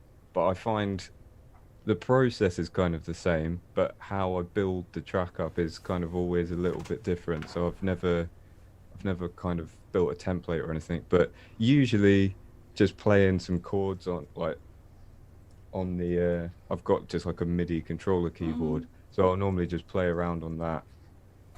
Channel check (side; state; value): both; identical; correlation 1.00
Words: I find the process is kind of the same, but how I build the track up is kind of always a little bit different. So I've never kind of built a template or anything, but usually just playing some chords on the I've got just like a MIDI controller keyboard, so I'll normally just play around on that